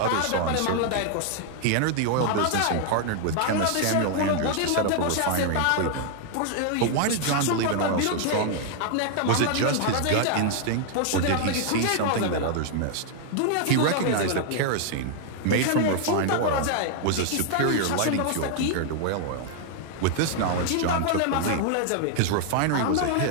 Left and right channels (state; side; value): different; both; correlation 0.00